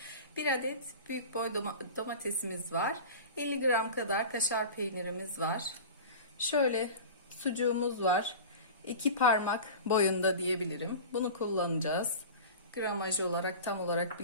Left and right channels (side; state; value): both; inverted; correlation -0.33